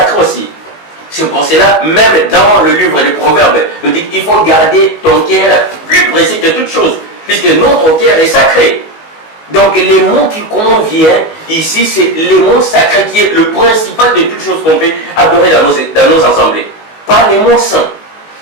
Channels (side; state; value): right; late; 19 ms